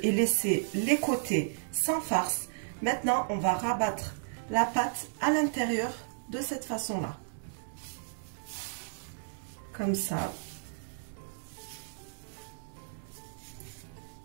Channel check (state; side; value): silent; left; digital silence